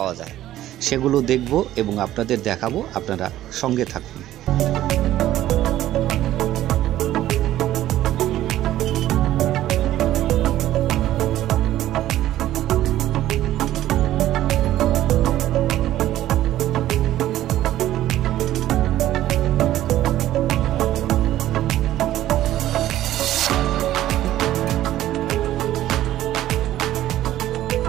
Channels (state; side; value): quieter; left; 13.6 dB